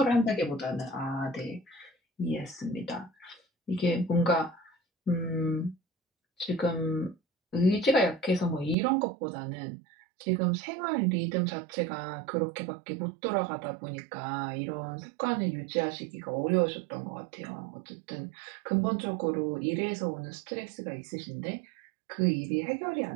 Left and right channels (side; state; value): left; drops out; at 8.8 s